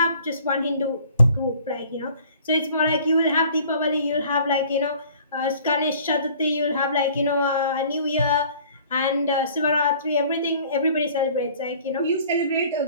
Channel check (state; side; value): inverted; both; correlation -0.52